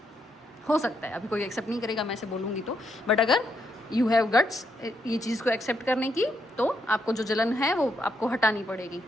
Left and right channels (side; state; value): both; normal; correlation 0.78